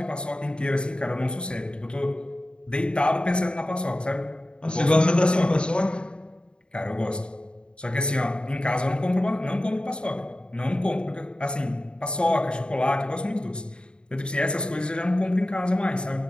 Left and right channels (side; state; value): right; late; 0.052 ms